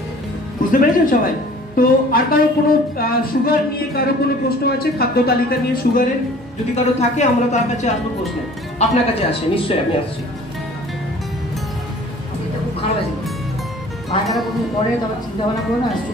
বুঝতে পেরেছেন সবাই? তো আর কারো কোনো সুগার নিয়ে কারো কোনো প্রশ্ন আছে? খাদ্য তালিকা নিয়ে সুগারের যদি কারো থাকে আমরা তার কাছে আসবো প্রশ্ন। আপনার কাছে আসে নিশ্চয়ই, আমি আসছি। এটা খুব খারাপ আছে, পায়খানা প্রথম পরে তবে চিন্তা ভাবনা করো না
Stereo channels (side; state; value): both; normal; correlation 0.49